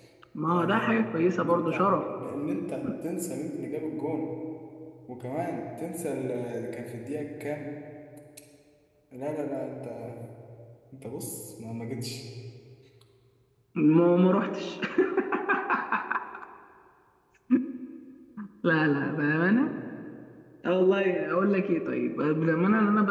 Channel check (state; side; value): identical; both; correlation 1.00